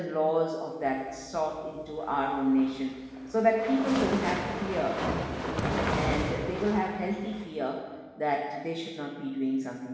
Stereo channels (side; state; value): both; identical; correlation 1.00